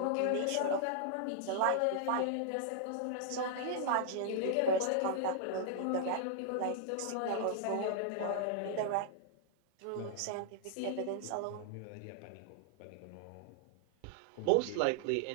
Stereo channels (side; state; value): both; different; correlation -0.01